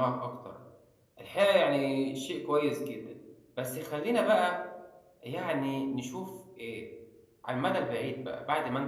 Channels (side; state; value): both; identical; correlation 1.00